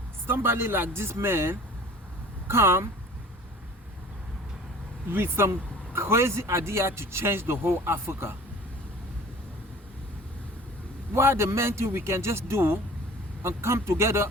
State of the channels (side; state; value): both; normal; correlation 0.45